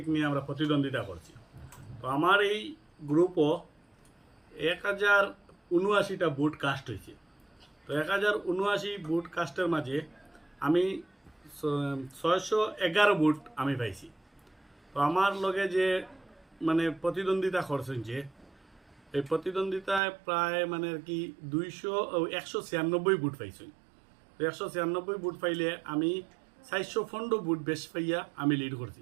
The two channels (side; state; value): left; drops out; at 20.0 s